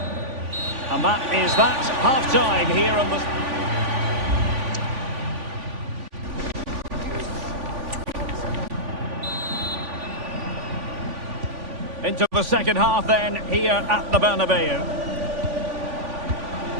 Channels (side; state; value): left; late; 3.5 ms